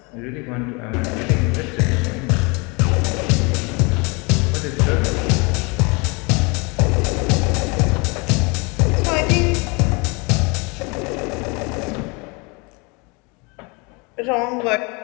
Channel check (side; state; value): right; quieter; 29.4 dB